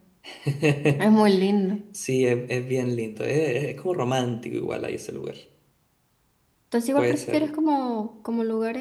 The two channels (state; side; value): identical; both; correlation 1.00